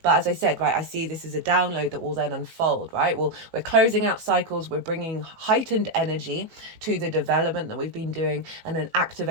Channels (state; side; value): late; left; 18 ms